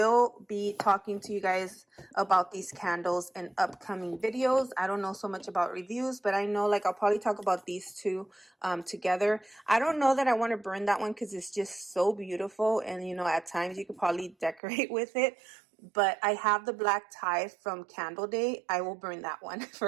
be talking to you guys about these candles in upcoming videos. I don't know so much about reviews, but I know like I'll probably talk about these two together. I don't know that I want to burn that one because it's just so beautiful, and you know, at times you could probably decorate with it. But I have the black tie from Candle Day. I will burn that one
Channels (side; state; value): left; drops out; at 14.6 s